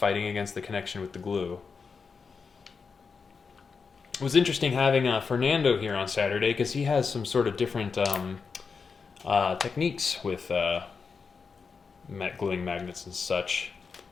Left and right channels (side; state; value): right; quieter; 5.2 dB